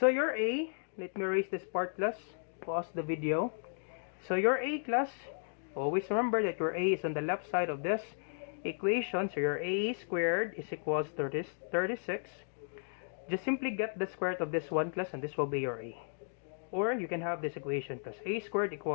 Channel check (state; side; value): silent; right; digital silence